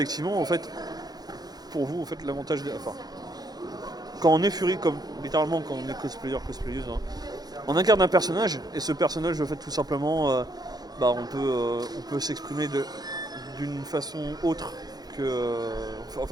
en fait, pour vous, en fait, l'avantage enfin, quand on est furie, comme littéralement quand on est cosplayeuse, on incarne un personnage, et ce personnage, en fait, tout simplement, on peut s'exprimer d'une façon autre que... en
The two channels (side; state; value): left; late; 0.19 ms